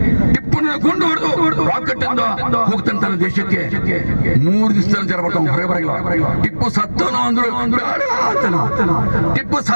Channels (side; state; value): both; inverted; correlation -1.00